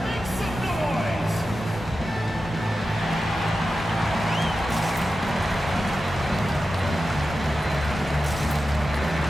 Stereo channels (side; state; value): both; normal; correlation 0.92